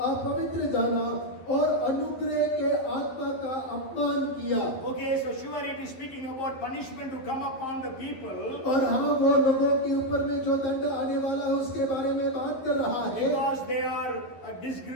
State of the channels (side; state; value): right; late; 11 ms